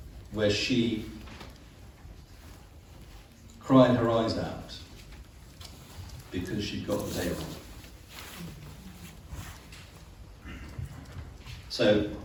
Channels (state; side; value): identical; both; correlation 1.00